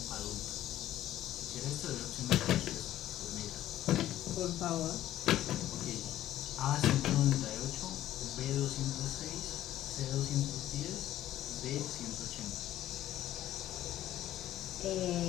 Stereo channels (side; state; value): right; quieter; 13.3 dB